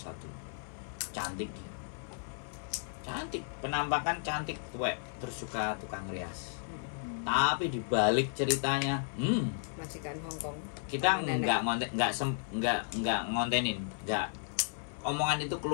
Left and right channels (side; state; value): right; silent; 55 dB below the other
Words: Cantik dia. Cantik, penampakan cantik, tuwek, terus suka tukang rias. Tapi dibalik ceritanya, Majikan Hong Kong. kita nggak ngontenin, nggak omongan itu